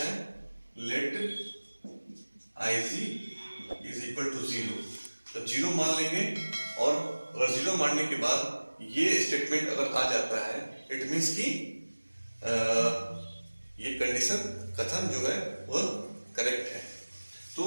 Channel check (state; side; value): inverted; both; correlation -1.00